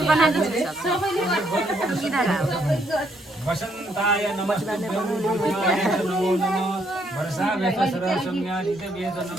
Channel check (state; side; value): normal; both; correlation 0.72